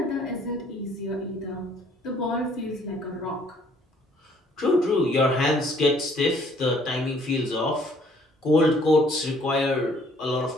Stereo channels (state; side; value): normal; both; correlation 0.61